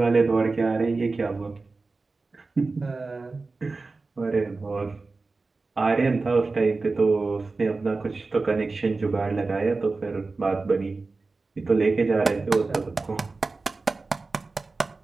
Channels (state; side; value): quieter; left; 3.8 dB